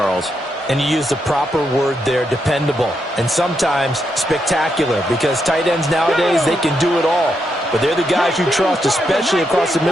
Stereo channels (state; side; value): normal; both; correlation 0.81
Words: And you use the proper word there, dependable. And sometimes spectacular, because tight ends nowadays, they can do it all. But they're the guys you trust, especially across the